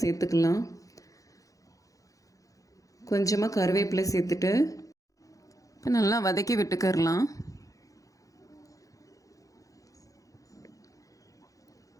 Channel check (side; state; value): right; late; 0.16 ms